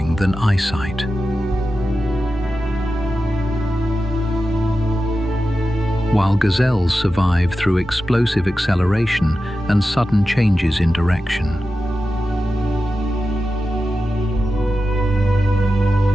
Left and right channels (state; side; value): normal; both; correlation 0.92